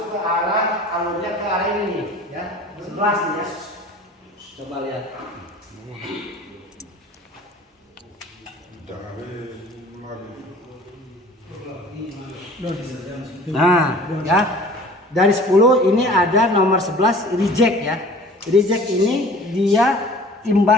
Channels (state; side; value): normal; both; correlation 0.46